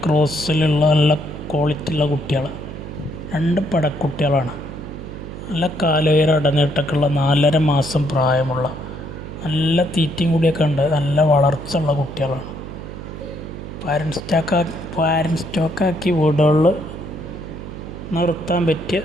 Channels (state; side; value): noise; right; hum, 10 dB below the sound